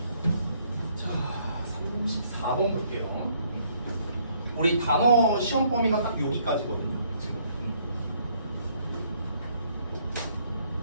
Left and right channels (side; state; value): both; inverted; correlation -0.66